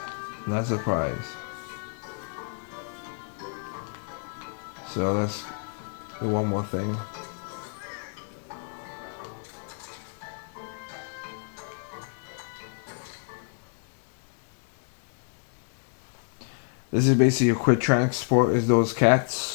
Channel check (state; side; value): silent; right; 58 dB below the other